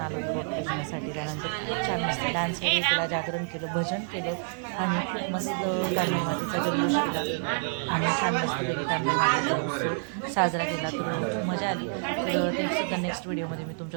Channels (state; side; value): silent; left; 59 dB below the other